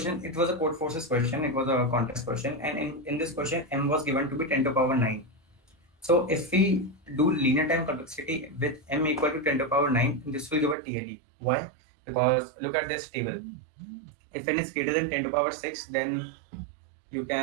it was a CodeForces question, it was a contest question, and in this question, m was given to be 10 to the power 9. So if we do linear time complexity with m equal to 10 to the power 9, this will give a TLE. Why? Because look at this table. If n is greater than 10 to the power 6, then you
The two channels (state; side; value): drops out; left; at 10.8 s